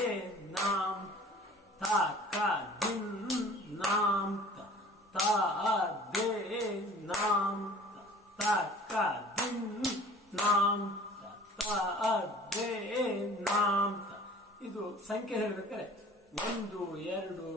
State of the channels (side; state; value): both; normal; correlation 0.47